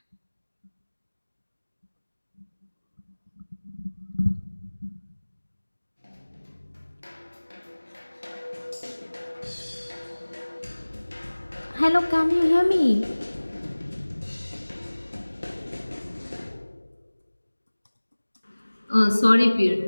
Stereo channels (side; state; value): both; inverted; correlation -1.00